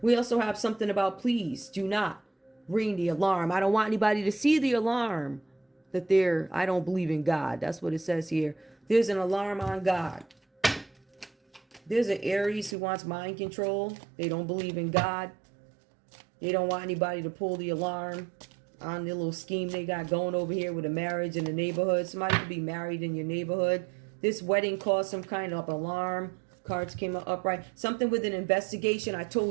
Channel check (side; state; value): left; drops out; at 12.8 s